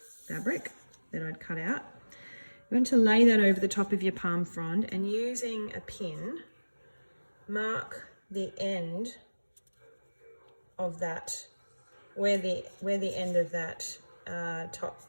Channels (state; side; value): inverted; both; correlation -1.00